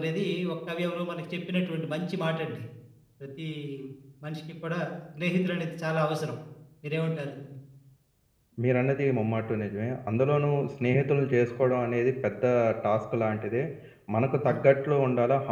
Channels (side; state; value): both; identical; correlation 1.00